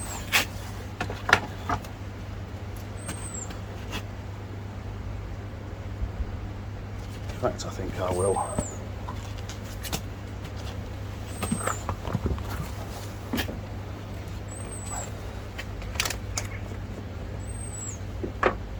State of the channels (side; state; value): both; identical; correlation 1.00